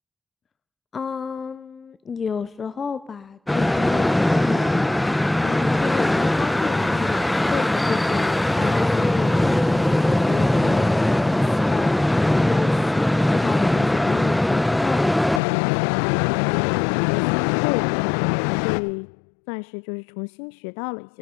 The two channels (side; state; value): right; drops out; at 15.4 s